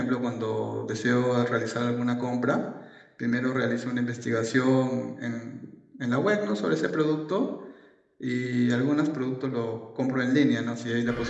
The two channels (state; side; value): identical; both; correlation 1.00